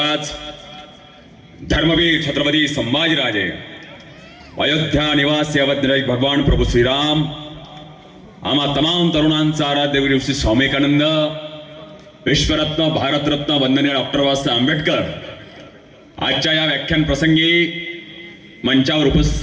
धर्मवीर छत्रपती संभाजीराजे, अयोध्या निवासी अवधराज भगवान प्रभू श्रीराम, आम्हा तमाम तरुणांचा आराध्य गुरु श्री स्वामी विवेकानंद, विश्वरत्न भारतरत्न वंदनीय डॉक्टर बाबासाहेब आंबेडकर आजच्या या व्याख्यान प्रसंगी मंचावर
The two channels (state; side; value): identical; both; correlation 1.00